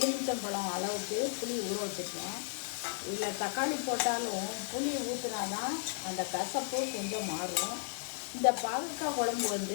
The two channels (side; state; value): right; silent; digital silence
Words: அளவுக்கு புளி ஊற வச்சுருக்கேன். இதில் தக்காளி போட்டாலும் புளி ஊற்றினாதான் அந்த கசப்பு கொஞ்சம் மாறும். இந்த பாகக்காய் குழம்பு